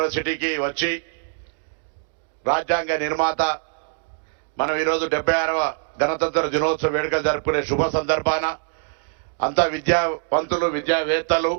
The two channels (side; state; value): left; silent; digital silence